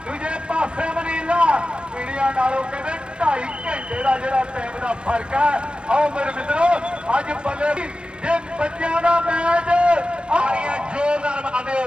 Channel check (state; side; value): late; left; 0.055 ms